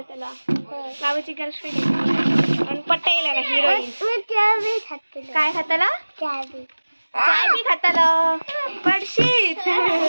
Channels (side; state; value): both; inverted; correlation -1.00